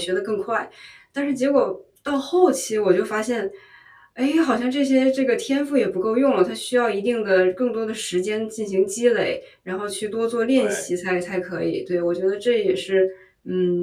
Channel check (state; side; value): identical; both; correlation 1.00